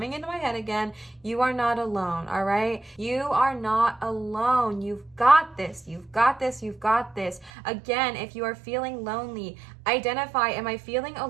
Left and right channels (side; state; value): left; drops out; at 7.5 s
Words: into my head again. You are not alone, all right? You are not alone. You've got this. You've got this. You've got this. Again, if you are feeling lonely, identify, am I feeling